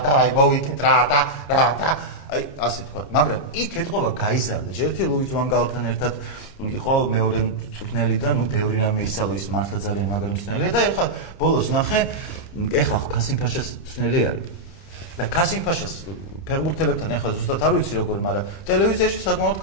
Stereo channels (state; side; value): late; right; 28 ms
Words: და აი მოვიგეთ რა და აი ასე თქვა, მაგრამ იქ ეთყობა გაიზარდა. ერთი ლუის ვან გალთან ერთად იყო მეორე მწვრთნელი და ნუ ბევრი რამე ისწავლა, ის მართლა ძალიან მაგარი მწვრთნელია და ეხლა ბოლოს ნახე, ეხლა ხო კასიმ ფაშას მწვრთნელი არის. და კასიმ ფაშას ფეხბურთელებთან ეხლა ზუსტად არ ვიცი როგორ, მაგრამ ტელევიზიაში საკმაოდ